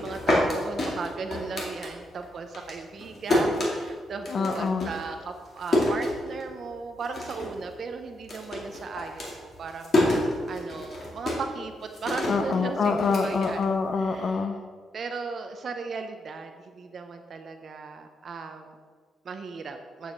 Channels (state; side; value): normal; both; correlation 0.80